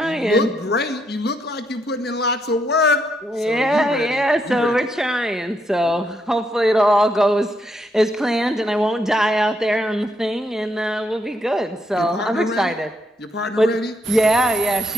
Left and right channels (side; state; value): both; normal; correlation 0.77